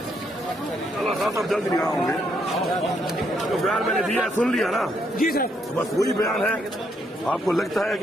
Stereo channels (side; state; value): both; normal; correlation 0.74